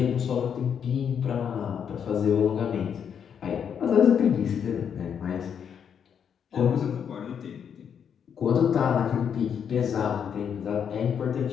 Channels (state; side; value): quieter; right; 7.8 dB